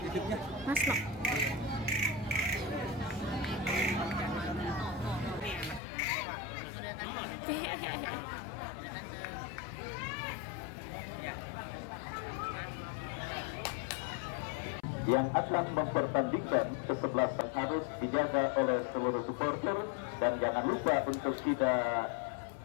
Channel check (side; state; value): right; drops out; at 5.8 s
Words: Hidupnya? Mas Nok. Yang akan mempertandingkan kesebelasan harus dijaga oleh seluruh supporter, dan jangan lupa untuk tidak